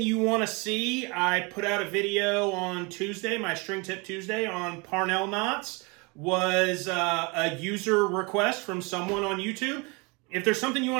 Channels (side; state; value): left; quieter; 28.9 dB